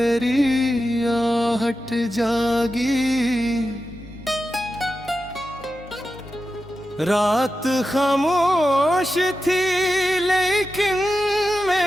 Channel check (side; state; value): both; normal; correlation 0.91